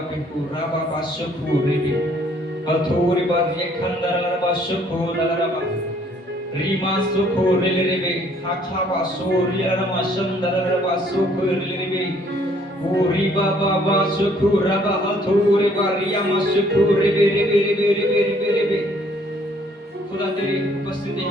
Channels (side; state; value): both; normal; correlation 0.62